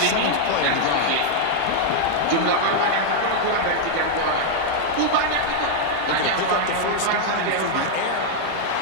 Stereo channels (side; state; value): both; different; correlation 0.00